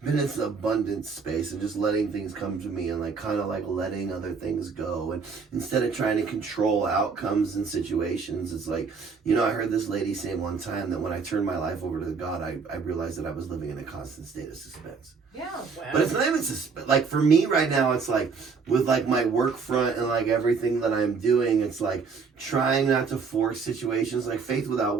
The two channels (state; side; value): quieter; left; 5.2 dB